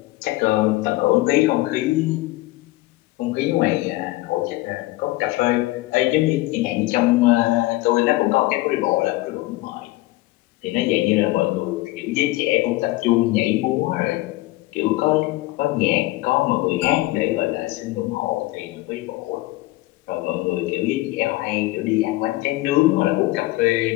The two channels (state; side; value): quieter; right; 19.0 dB